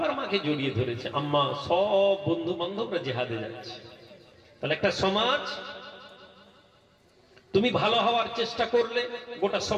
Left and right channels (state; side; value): identical; both; correlation 1.00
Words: মাকে জড়িয়ে ধরেছে, আম্মা সব বন্ধু বান্ধবরা জিহাদে যাচ্ছে। তাহলে একটা সমাজ, তুমি ভালো হওয়ার চেষ্টা করলে গোটা